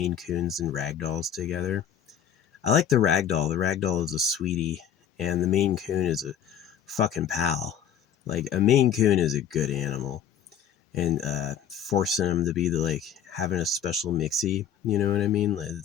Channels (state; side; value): quieter; right; 8.7 dB